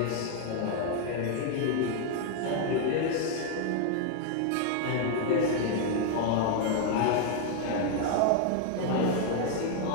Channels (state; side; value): different; both; correlation 0.00